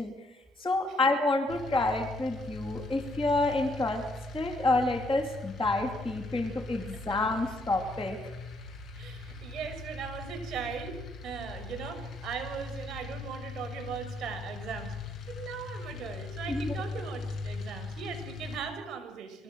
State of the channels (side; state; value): both; normal; correlation 0.70